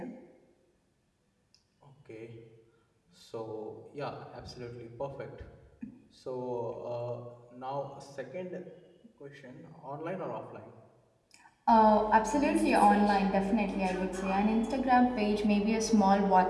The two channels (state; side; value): identical; both; correlation 1.00